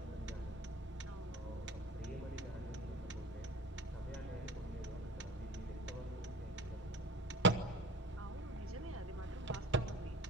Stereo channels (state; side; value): normal; both; correlation 0.40